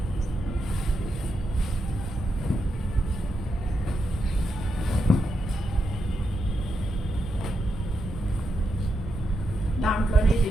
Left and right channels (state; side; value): normal; both; correlation 0.85